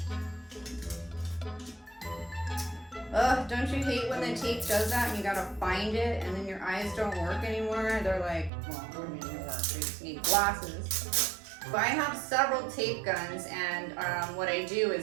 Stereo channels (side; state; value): left; drops out; at 8.5 s